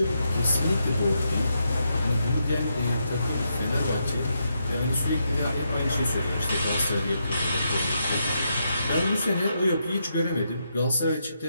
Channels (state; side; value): inverted; both; correlation -0.82